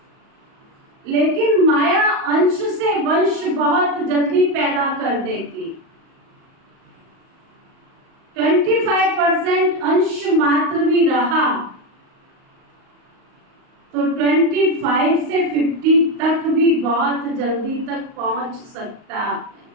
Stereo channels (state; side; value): late; left; 38 ms